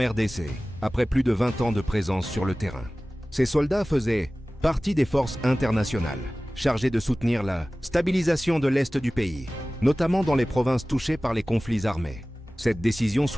après plus de 20 ans de présence sur le terrain. Ces soldats faisaient partie des forces internationales, chargées de soutenir la stabilisation de l'Est du pays, notamment dans les provinces touchées par les conflits armés. Cette décision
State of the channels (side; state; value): both; normal; correlation 0.97